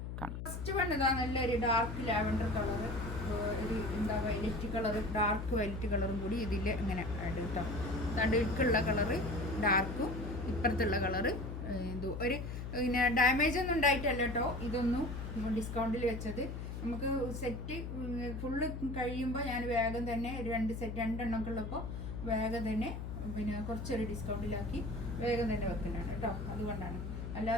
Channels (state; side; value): noise; left; hum, 6 dB below the sound